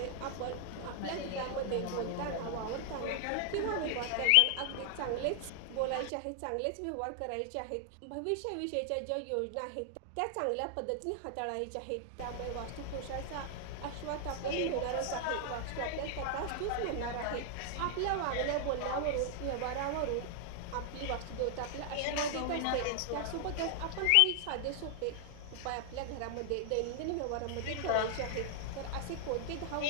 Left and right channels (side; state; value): both; different; correlation 0.00